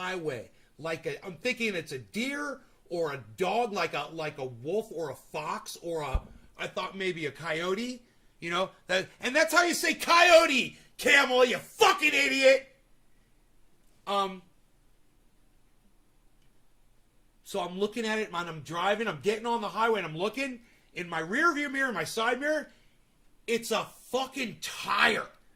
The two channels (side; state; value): both; identical; correlation 1.00